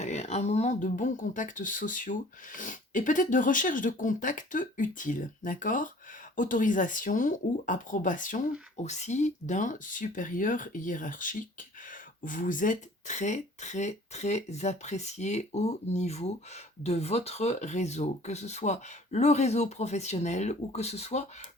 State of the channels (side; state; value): both; normal; correlation 0.50